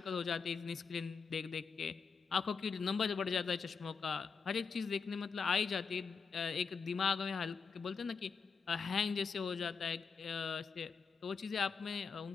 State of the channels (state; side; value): quieter; right; 5.5 dB